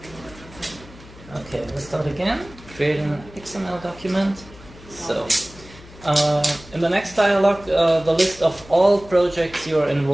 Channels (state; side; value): noise; left; hum, 20 dB below the sound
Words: okay, let's start again. Creating an XML document. So, in the next dialog, the list of all projects you are